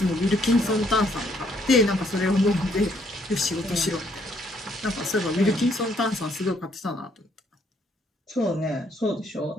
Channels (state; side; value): normal; both; correlation 0.69